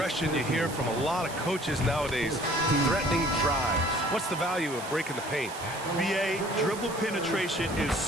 you hear from a lot of coaches nowadays, threatening drives. What's the value of breaking the paint? B.A., dribble penetration is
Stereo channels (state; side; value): noise; right; hiss, 13 dB below the sound